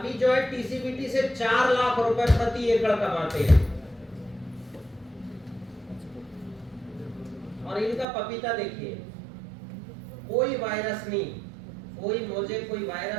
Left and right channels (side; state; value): left; drops out; at 8.1 s